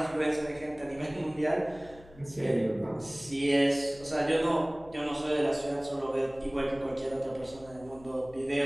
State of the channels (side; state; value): left; noise; hum, 22 dB below the sound